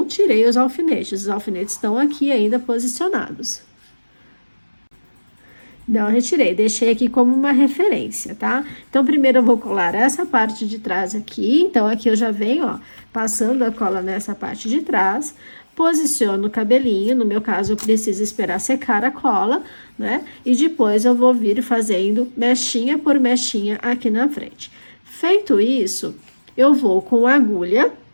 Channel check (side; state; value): both; inverted; correlation -1.00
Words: tirei os alfinetes estão aqui ainda posicionados. Não retirei, deixei aqui como uma referência, tá? Então, primeiro eu vou colar essa parte de trás aqui. Então, aqui eu já venho, ó, passando a cola nessa parte de trás. Posiciono o cabelinho, no meu caso, eu preciso esperar secar a cola, né? E depois eu vou vir fazendo mechinha por mechinha aqui na frente. Feito isso, eu vou com a agulha